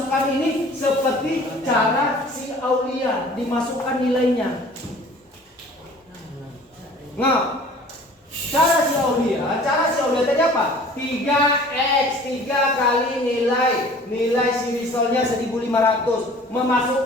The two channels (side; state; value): both; normal; correlation 0.48